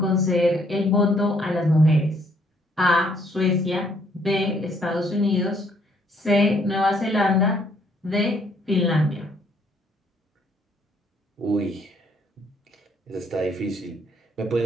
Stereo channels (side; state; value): both; normal; correlation 0.67